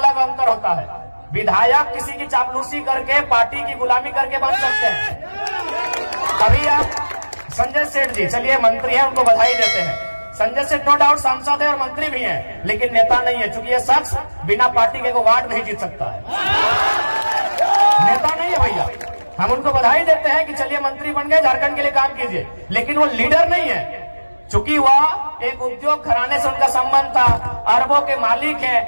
अंतर होता है। विधायक किसी की चापलूसी करके, पार्टी की गुलामी करके बन सकते हैं। अभी आप संजय सेठ जी, चलिए मंत्री हैं, उनको बधाई देते हैं। संजय सेठ नो डाउट सांसद है और मंत्री भी हैं, लेकिन नेता नहीं है, क्योंकि ये शख्स बिना पार्टी के वार्ड नहीं जीत सकता है। नेता नहीं है भैया। हम उनको बधाई देते हैं कि चलिए मंत्री बन गए, झारखंड के लिए काम कीजिए, लेकिन वो लीडर नहीं है। चूंकि वह एक उद्योग घराने से उनका संबंध था, अरबों के मालिक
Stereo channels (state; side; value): inverted; both; correlation -1.00